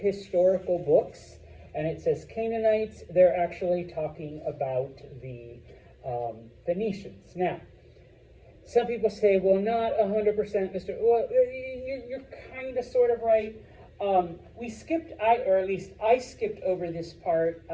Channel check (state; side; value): identical; both; correlation 1.00